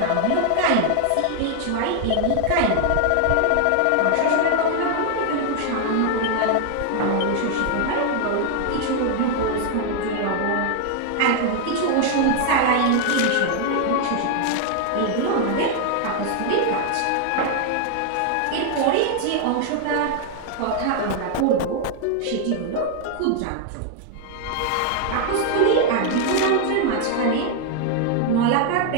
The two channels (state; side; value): different; both; correlation 0.00